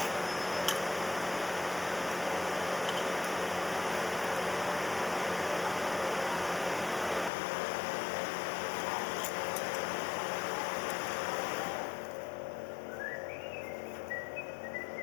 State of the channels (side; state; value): right; drops out; at 7.3 s